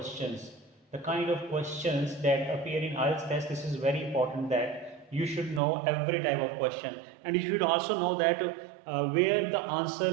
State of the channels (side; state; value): left; drops out; at 5.6 s